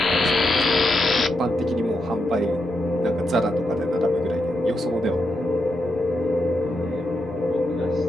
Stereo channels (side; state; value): both; normal; correlation 0.84